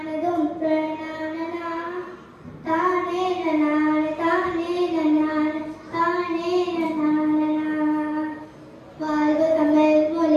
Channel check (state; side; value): identical; both; correlation 1.00